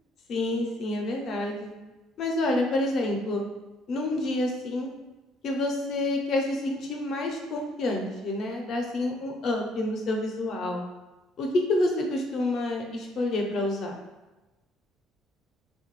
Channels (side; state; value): both; normal; correlation 0.66